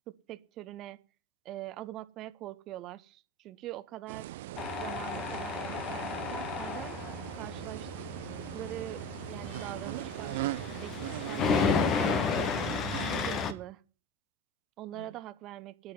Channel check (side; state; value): both; normal; correlation 0.32